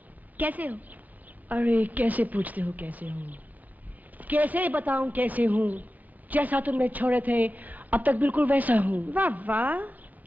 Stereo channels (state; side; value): late; left; 0.081 ms